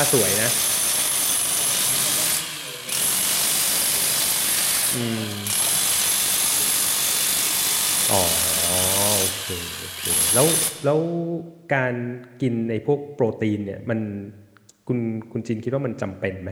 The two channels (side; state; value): both; identical; correlation 1.00